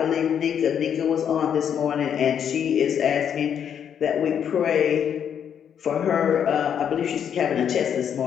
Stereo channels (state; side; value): quieter; right; 8.4 dB